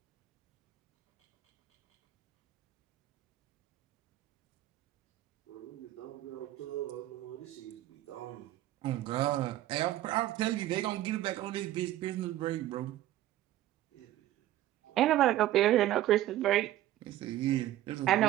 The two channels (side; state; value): left; quieter; 14.3 dB